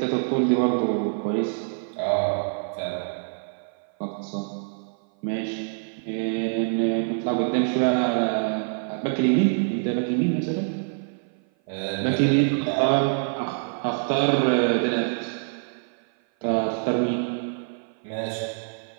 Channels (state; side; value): silent; left; 56 dB below the other